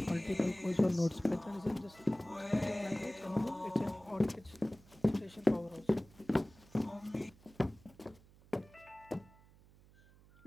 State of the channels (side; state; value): right; noise; hum, 25 dB below the sound